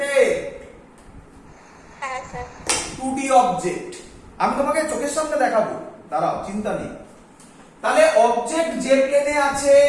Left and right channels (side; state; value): both; identical; correlation 1.00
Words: হ্যাঁ স্যার। 2D অবজেক্ট আমি তোমাকে চোখের সামনে দেখাবো, দাঁড়াও, চিন্তা নেই। তাহলে অবজেক্ট যে প্লেনে আছে